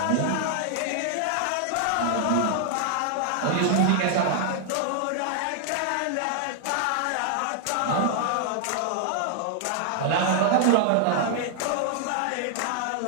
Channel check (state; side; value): different; both; correlation 0.00